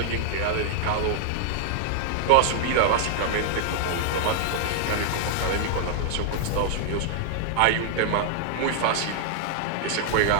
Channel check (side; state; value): both; different; correlation 0.00